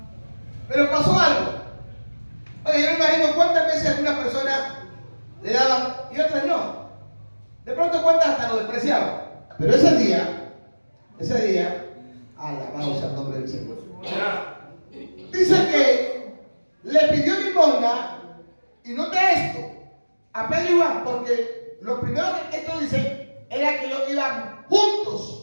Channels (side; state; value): both; inverted; correlation -1.00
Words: Pero pasó algo. Oye, yo me imagino cuántas veces alguna persona le daban y otras no. De pronto cuántas hasta lo despreciaban. Pero ese día, alabado sea el nombre del Señor. Dice que le pidió limosna, y nota esto, a Pedro y Juan, porque lo primero que esto dice era que ellos iban